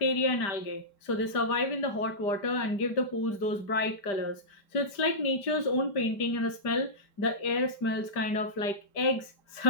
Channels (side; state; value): right; late; 5.0 ms